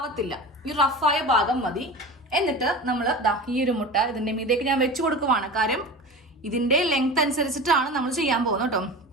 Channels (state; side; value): normal; both; correlation 0.32